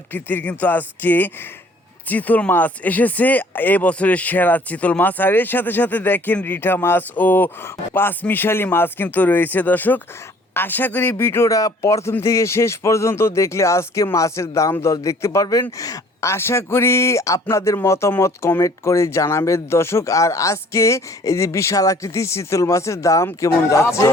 কিন্তু আজকে চিতল মাছ এসেছে, এই বছরের সেরা চিতল মাছ। আর এর সাথে সাথে দেখেন রিঠা মাছ ও পাঁচমিশালি মাছ কিন্তু রয়েছে। দর্শক, আশা করি ভিডিওটা প্রথম থেকে শেষ পর্যন্ত দেখলে আজকে মাছের দাম দর দেখতে পারবেন। আশা করি আপনাদের মতামত কমেন্ট করে জানাবেন দর্শক। আর আজকে এই যে বিশাল আকৃতির চিতল মাছের দাম কেমন যাচ্ছে।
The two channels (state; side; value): normal; both; correlation 0.55